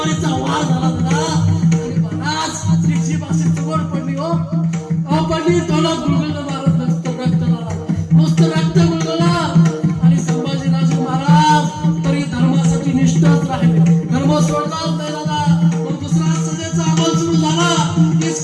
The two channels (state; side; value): identical; both; correlation 1.00